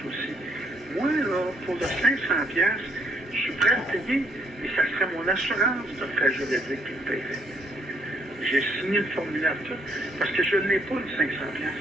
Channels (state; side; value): normal; both; correlation 0.69